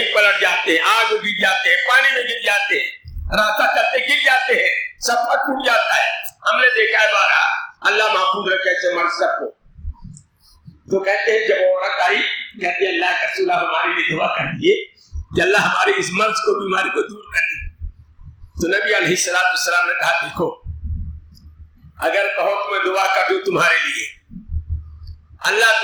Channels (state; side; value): identical; both; correlation 1.00